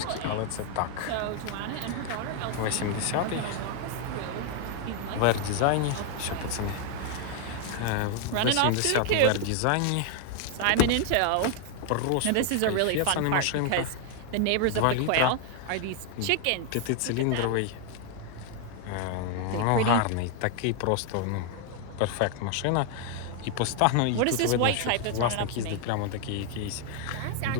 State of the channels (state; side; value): different; both; correlation 0.00